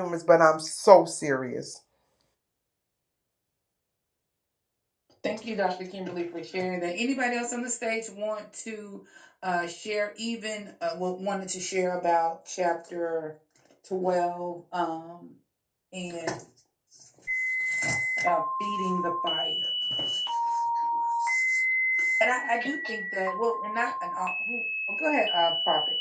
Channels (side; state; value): both; identical; correlation 1.00